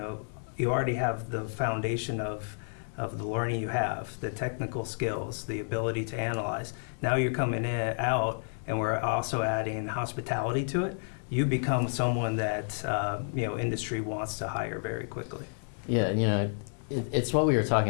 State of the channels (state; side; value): silent; right; digital silence